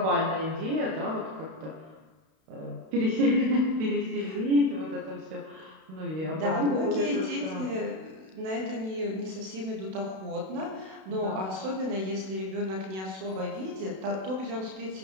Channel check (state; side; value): late; left; 32 ms